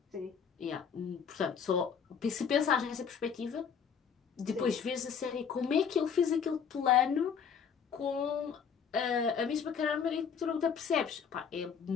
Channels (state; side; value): quieter; right; 6.9 dB